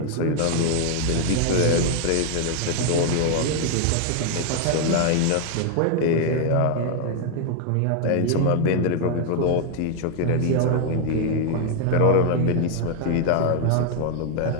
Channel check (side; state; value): both; different; correlation 0.00